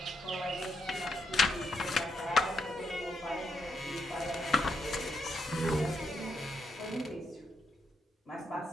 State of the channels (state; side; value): normal; both; correlation 0.80